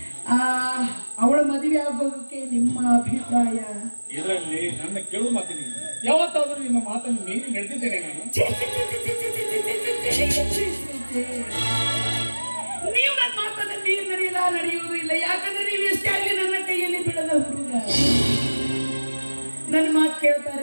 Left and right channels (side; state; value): both; inverted; correlation -1.00